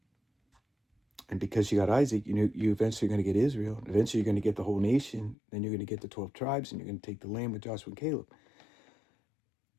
And because she got Isaac, you eventually going to get Israel. Eventually, you're going to get the whole nation. Then you're going to get the 12 tribes, and you're going to take the land with Joshua and Caleb.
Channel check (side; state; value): right; drops out; at 5.4 s